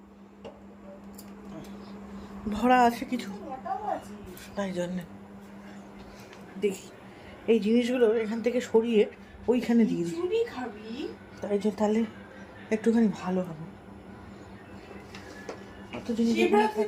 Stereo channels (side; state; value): both; identical; correlation 1.00